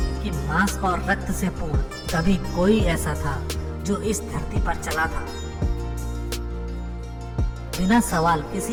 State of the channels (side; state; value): both; identical; correlation 1.00